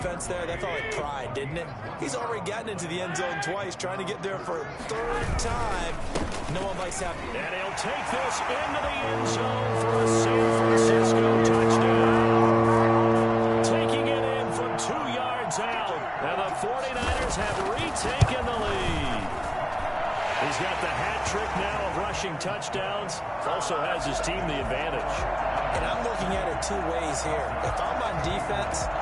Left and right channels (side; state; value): both; identical; correlation 1.00